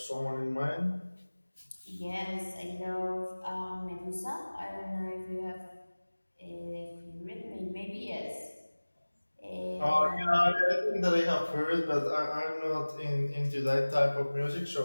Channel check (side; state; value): both; inverted; correlation -1.00